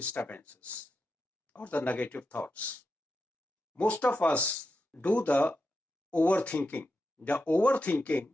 or the negative thoughts. Most of us do the overthinking. The overthinking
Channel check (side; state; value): both; normal; correlation 0.87